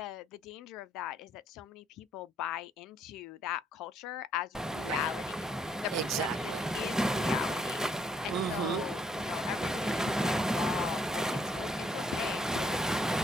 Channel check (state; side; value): normal; both; correlation 0.69